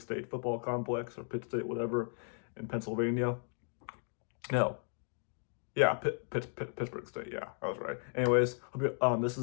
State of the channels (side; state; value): right; silent; 54 dB below the other